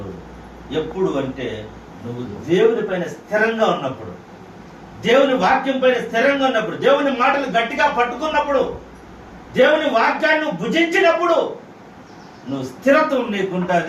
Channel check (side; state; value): both; identical; correlation 1.00